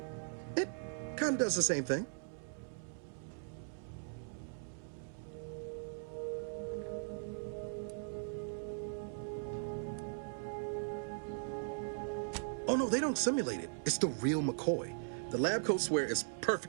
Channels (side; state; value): left; silent; digital silence